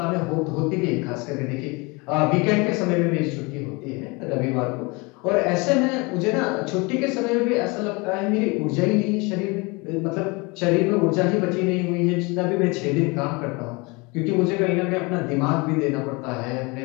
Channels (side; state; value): right; quieter; 27.2 dB